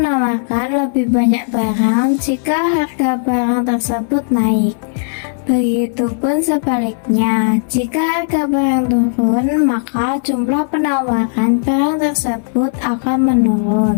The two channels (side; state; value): right; silent; 65 dB below the other